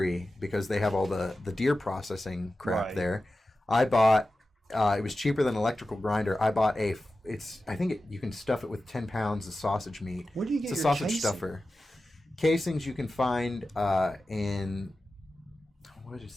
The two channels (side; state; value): both; normal; correlation 0.94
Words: because they have all the deer processing crap there. I bought, it was cheaper than an electrical grinder. I bought you can stuff it with 10 pounds of sausage meat. Where do you get it's a your sausage casing? Stuffer. Casings you can find in, what is